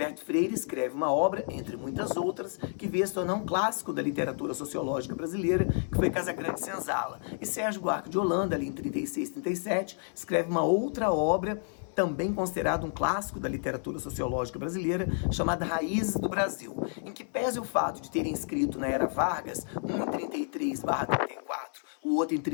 Freire escreve uma obra, entre muitas outras, que veio a se tornar um clássico da literatura sociológica brasileira, que foi Casagrande Senzala. E Sérgio Buarque de Holanda, ali em 36, 37, escreve uma outra obra também considerado um clássico da literatura sociológica brasileira, chamada Raízes do Brasil, em que pese o fato de terem escrito na era Vargas, um em 33/34, o outro em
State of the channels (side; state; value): right; silent; 58 dB below the other